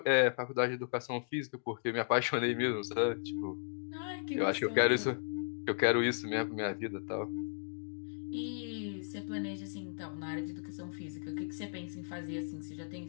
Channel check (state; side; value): silent; right; digital silence